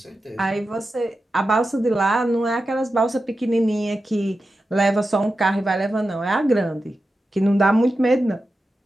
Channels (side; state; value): both; normal; correlation 0.91